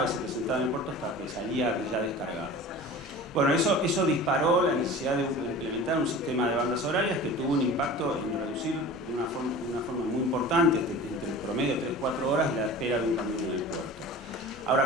y se presentaba en el puerto hasta que salía ya descargado. Bueno, eso disparó la necesidad de implementar un sistema de bandas horarias que tuvo un impacto en reducir de una forma muy importante, entre el promedio de 3-4 horas, la espera de un camión en el puerto.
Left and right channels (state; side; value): normal; both; correlation 0.38